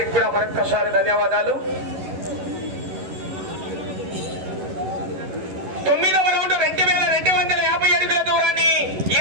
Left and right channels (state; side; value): late; left; 11 ms